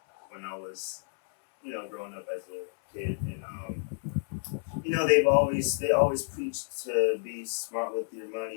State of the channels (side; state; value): right; silent; 58 dB below the other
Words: when I was, growing up as a kid, and they always preached to be smart with your